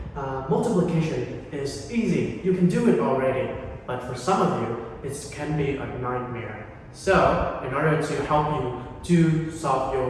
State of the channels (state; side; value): identical; both; correlation 1.00